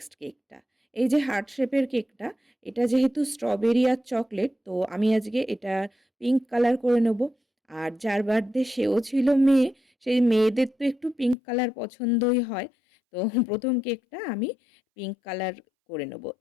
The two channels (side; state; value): right; drops out; at 11.4 s